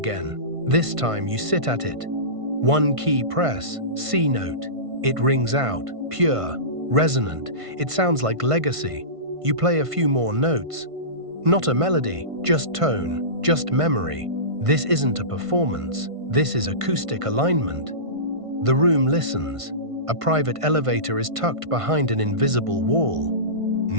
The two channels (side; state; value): left; late; 1.5 ms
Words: This time you sit at it. One key press, C note. It rings out, pure, resonant. It sounds like legacy. You play a few more notes. Not a melody, just tone, just memory. This isn't a performance. This is acoustic alignment. The room listens. A private elevator is tucked behind an invisible wall.